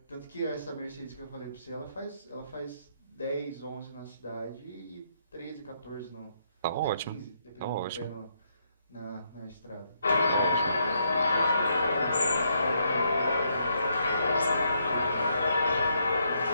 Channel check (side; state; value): both; inverted; correlation -0.75